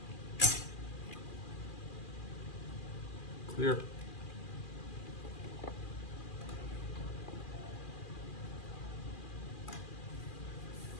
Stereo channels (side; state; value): right; late; 2.4 ms